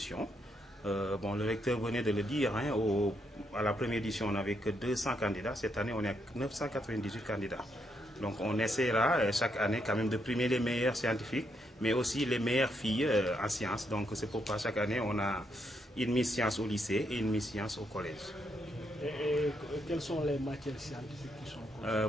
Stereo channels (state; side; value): normal; both; correlation 0.78